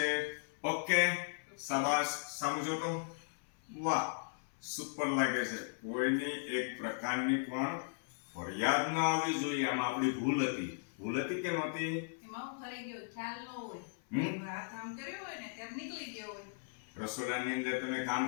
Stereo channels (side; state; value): right; silent; 53 dB below the other